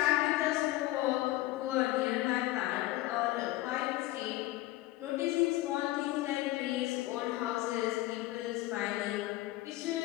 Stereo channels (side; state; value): right; quieter; 17.6 dB